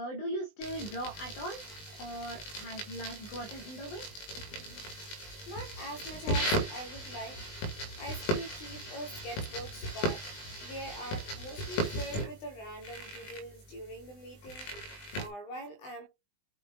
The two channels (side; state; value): right; late; 20 ms